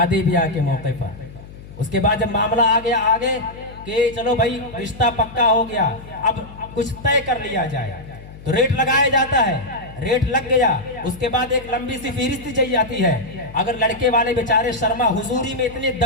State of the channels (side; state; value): left; noise; hum, 17 dB below the sound